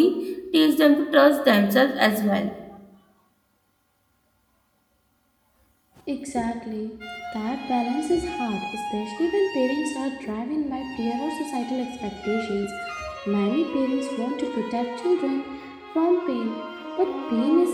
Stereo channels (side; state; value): both; identical; correlation 1.00